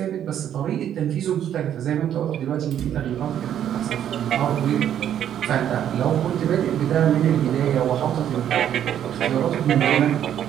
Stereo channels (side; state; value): left; quieter; 10.2 dB